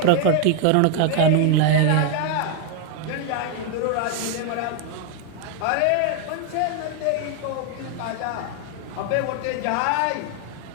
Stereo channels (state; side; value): different; both; correlation 0.00